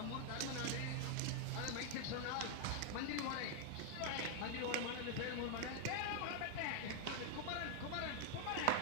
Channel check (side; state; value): both; different; correlation 0.00